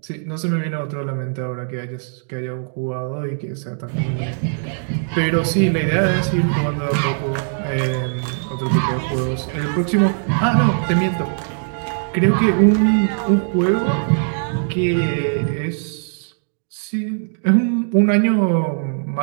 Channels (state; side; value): silent; left; digital silence